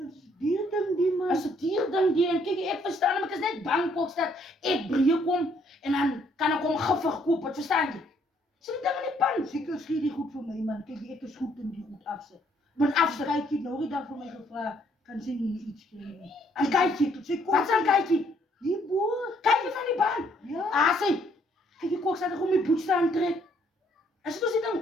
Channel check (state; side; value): normal; both; correlation 0.67